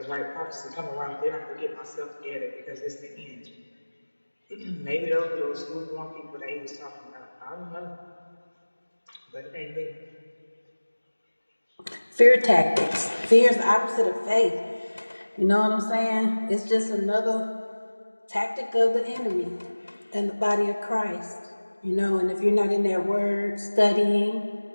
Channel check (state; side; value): inverted; both; correlation -1.00